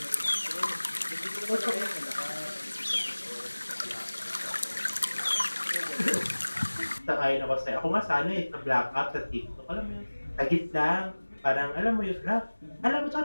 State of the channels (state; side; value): inverted; both; correlation -1.00